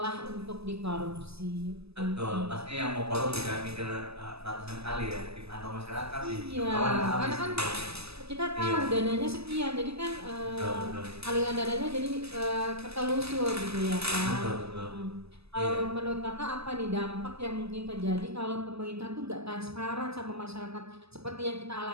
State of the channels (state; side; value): late; left; 0.79 ms